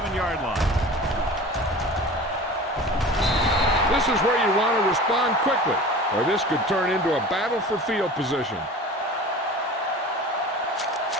line. This is where you want to respond quickly, or this could turn into a battle for field position.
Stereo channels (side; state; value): both; normal; correlation 0.38